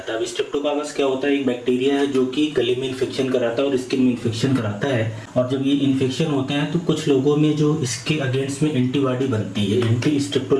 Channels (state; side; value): identical; both; correlation 1.00